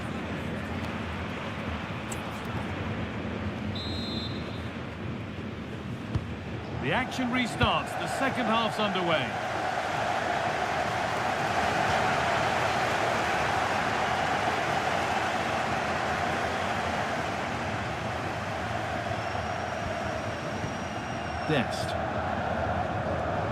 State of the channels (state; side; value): identical; both; correlation 1.00